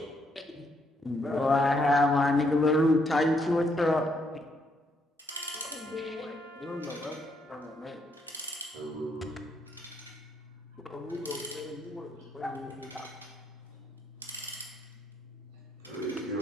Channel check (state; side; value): normal; both; correlation 0.73